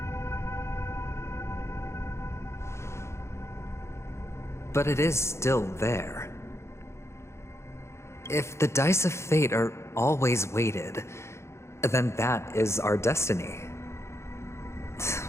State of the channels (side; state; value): right; late; 0.13 ms